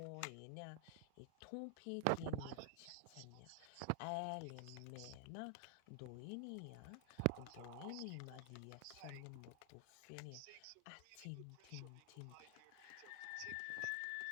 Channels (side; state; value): both; different; correlation 0.00